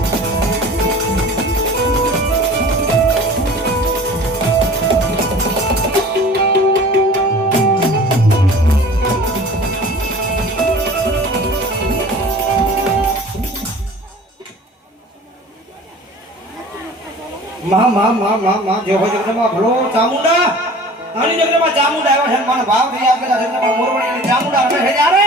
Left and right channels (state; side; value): normal; both; correlation 0.44